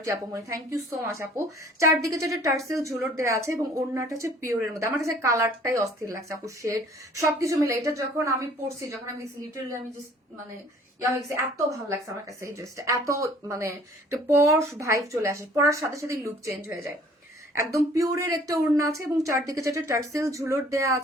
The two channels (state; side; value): normal; both; correlation 0.54